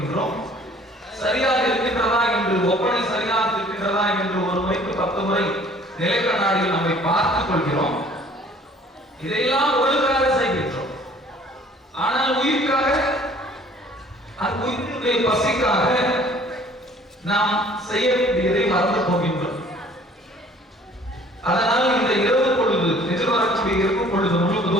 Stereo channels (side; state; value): both; normal; correlation 0.54